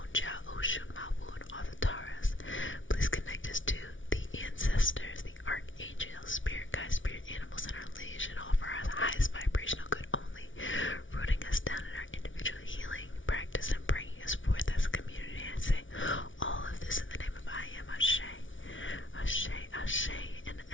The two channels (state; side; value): late; right; 0.56 ms